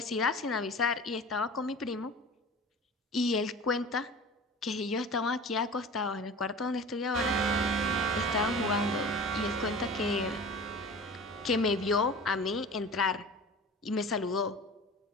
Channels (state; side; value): normal; both; correlation 0.37